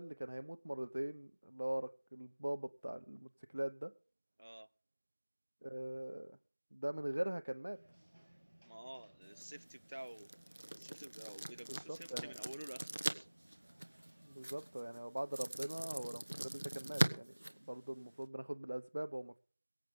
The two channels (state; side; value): inverted; both; correlation -1.00